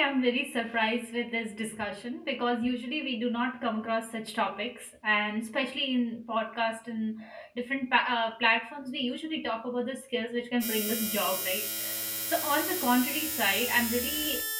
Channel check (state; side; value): identical; both; correlation 1.00